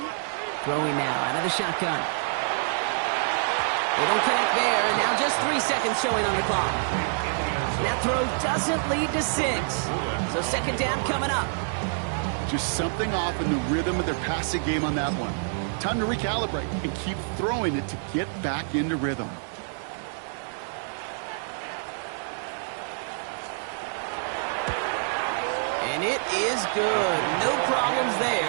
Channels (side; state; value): left; silent; digital silence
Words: Throwing now out of the shotgun. They don't connect there, and now just 3 seconds showing on the clock. That throw doesn't lead to 6. So second down coming up. Just something off in the rhythm of their passing game on that one. Time to recalibrate and keep throwing it to get back into rhythm. And it is good. No problems